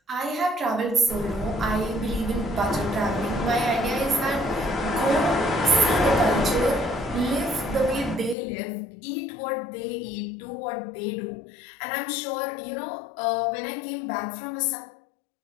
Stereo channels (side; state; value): right; drops out; at 8.3 s